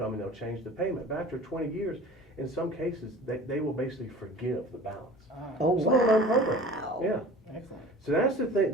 and they'll change the payment. But after 20 years, in some cases, they will basically forgive the balance. Oh, Some of them wow. program. Yeah. Excellent. So that's the thing.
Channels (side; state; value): both; normal; correlation 0.42